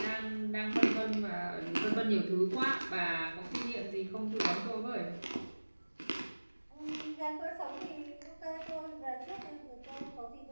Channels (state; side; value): inverted; both; correlation -1.00